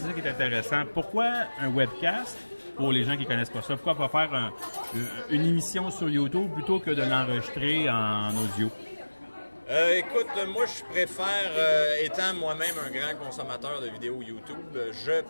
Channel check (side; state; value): both; inverted; correlation -1.00